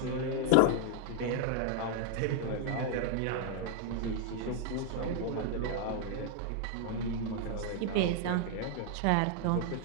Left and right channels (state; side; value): different; both; correlation 0.00